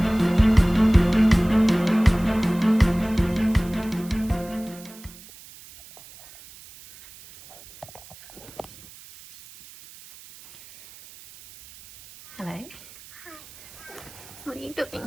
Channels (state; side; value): noise; right; hiss, 21 dB below the sound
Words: Hello. Hi. What are you doing?